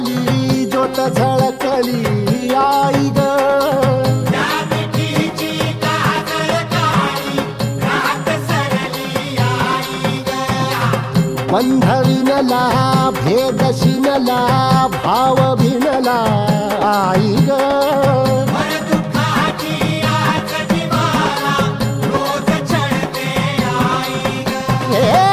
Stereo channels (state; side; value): identical; both; correlation 1.00